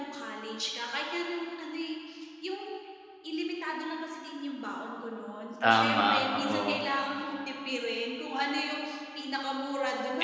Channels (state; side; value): identical; both; correlation 1.00